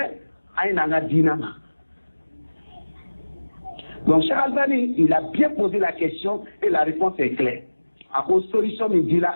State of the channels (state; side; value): inverted; both; correlation -1.00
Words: à une anadinama. Donc, Cheikh Albani, il a bien posé la question et la réponse est claire. À cause de solution, il dit là,